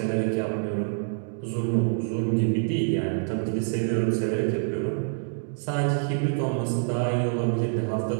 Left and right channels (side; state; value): left; silent; digital silence